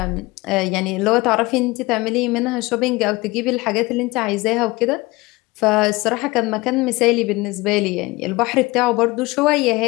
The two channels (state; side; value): quieter; right; 22.1 dB